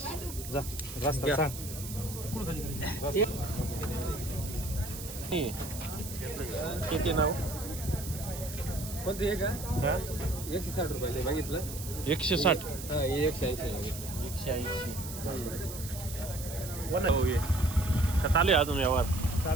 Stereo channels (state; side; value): noise; right; hiss, 10 dB below the sound